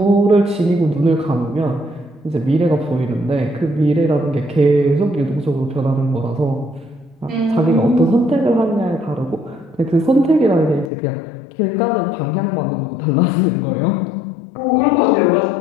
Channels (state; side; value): drops out; right; at 10.9 s